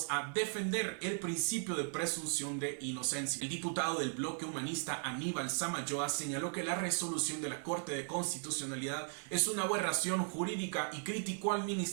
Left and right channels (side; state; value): left; silent; 53 dB below the other